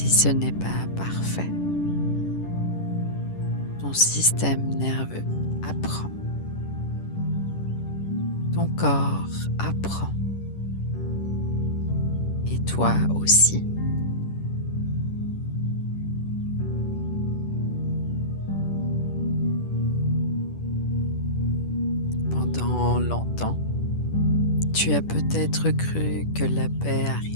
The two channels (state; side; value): late; right; 10 ms